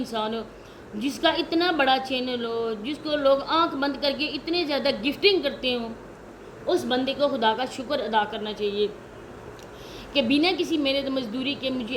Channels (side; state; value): both; identical; correlation 1.00